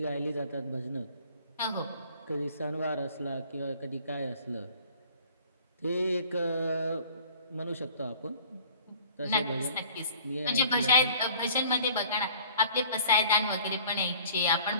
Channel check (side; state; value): both; inverted; correlation -0.50